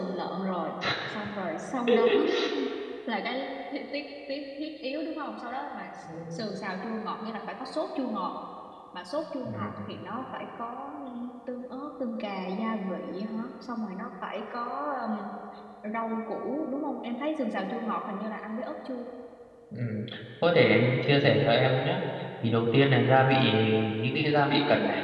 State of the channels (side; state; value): both; identical; correlation 1.00